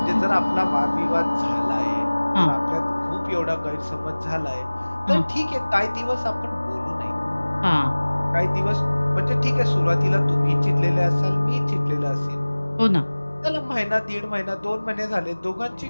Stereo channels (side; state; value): both; inverted; correlation -1.00